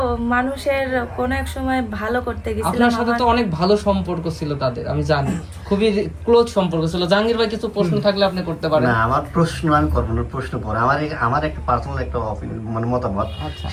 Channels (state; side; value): identical; both; correlation 1.00